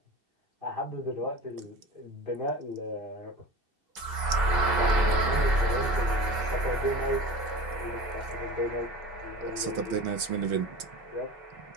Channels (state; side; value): late; left; 2.7 ms